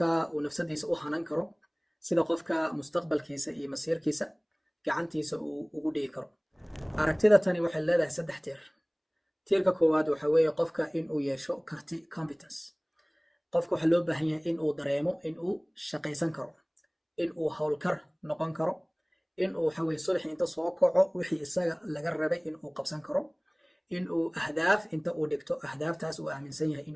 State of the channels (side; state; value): both; identical; correlation 1.00